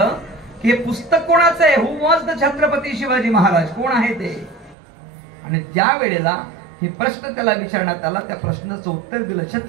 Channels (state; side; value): drops out; left; at 4.8 s